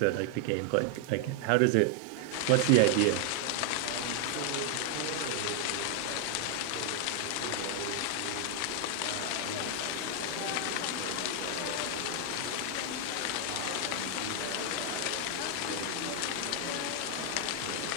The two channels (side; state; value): both; different; correlation 0.00